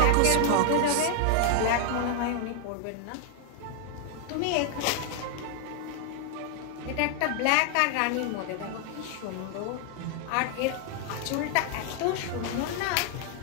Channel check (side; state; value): both; different; correlation 0.00